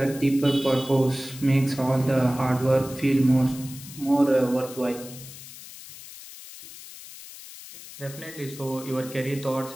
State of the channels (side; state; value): left; noise; hiss, 15 dB below the sound